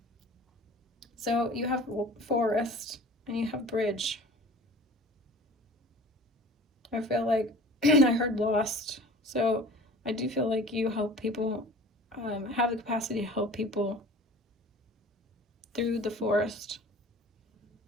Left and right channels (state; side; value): normal; both; correlation 0.43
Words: So you have forest and you have bridge. I feel like I heard lost. So I do feel like you help people, have the capacity to help people through the forest.